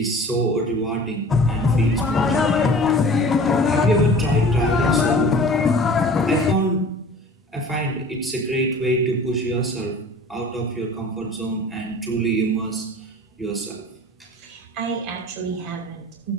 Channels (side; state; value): both; normal; correlation 0.43